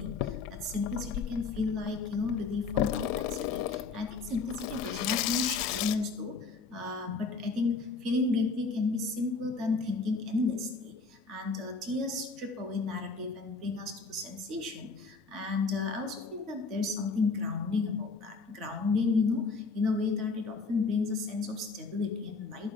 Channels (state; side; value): quieter; right; 4.3 dB